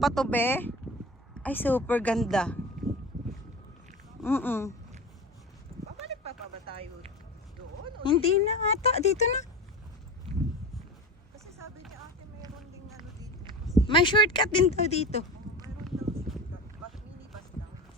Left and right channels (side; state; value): both; normal; correlation 0.29